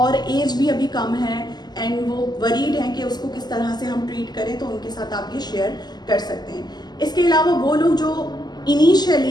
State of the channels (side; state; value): right; late; 0.20 ms